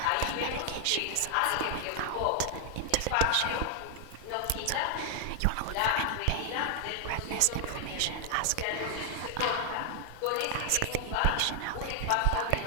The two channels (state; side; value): different; both; correlation 0.00